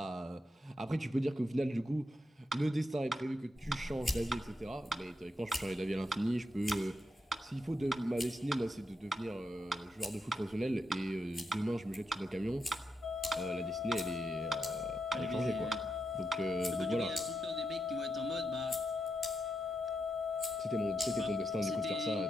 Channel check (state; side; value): normal; both; correlation 0.84